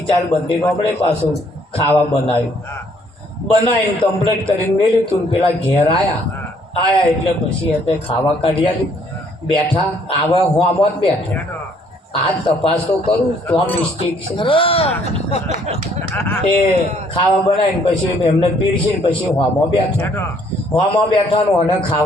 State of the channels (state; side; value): normal; both; correlation 0.64